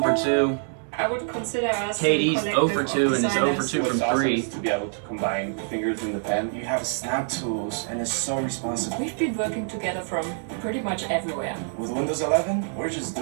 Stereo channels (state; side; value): silent; left; 61 dB below the other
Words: for 2. I would consider us KD's a 0 for 2 and is 0 for 2 What's from awesome 3. is to be able to combine fingers in the pen. You have snap tools, and it's so responsive. We've been working together from pretty much everywhere. With Windows 11, we're just